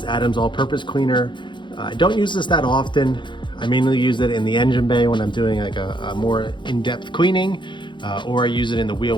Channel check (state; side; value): late; right; 0.23 ms